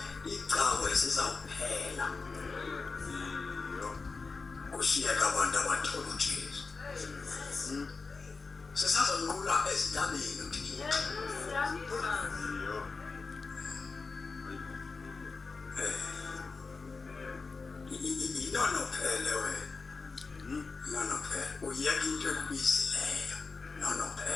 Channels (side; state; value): right; quieter; 4.3 dB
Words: Kushiyeka abantu abathola uJesu. Sesazonqula ezintabeni uthi inono phele wena. Nono phele uyeka into ekubisileyo. Nono